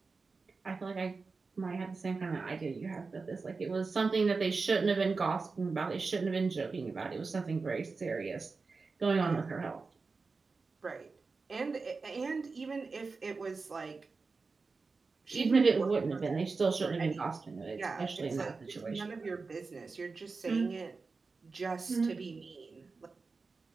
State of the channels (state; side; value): quieter; left; 4.3 dB